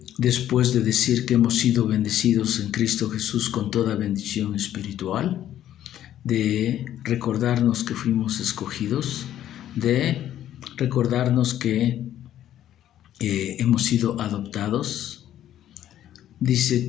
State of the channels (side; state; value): right; quieter; 11.7 dB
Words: después de decir que hemos sido bendecidos en Cristo Jesús con toda bendición espiritual, de recordarnos que fuimos escogidos, de recordarnos que hemos sido adoptados, dice